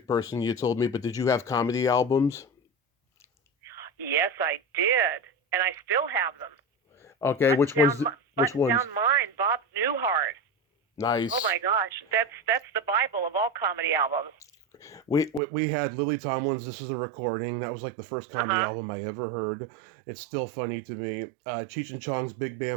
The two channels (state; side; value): drops out; left; at 15.4 s